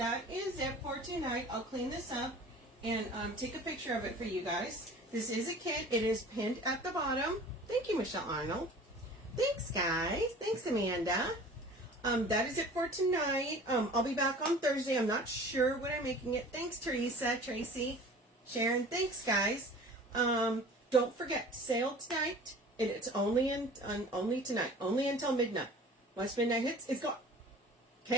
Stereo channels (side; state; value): both; normal; correlation 0.44